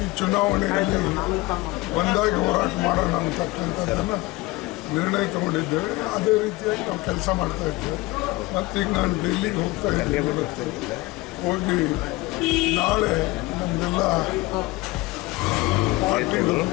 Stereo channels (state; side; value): quieter; right; 21.0 dB